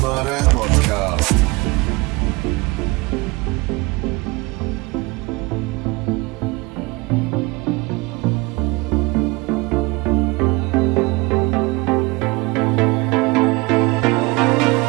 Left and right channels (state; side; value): quieter; left; 24.6 dB